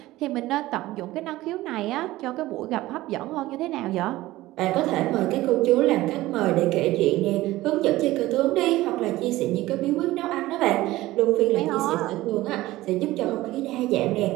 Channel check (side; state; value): left; quieter; 17.3 dB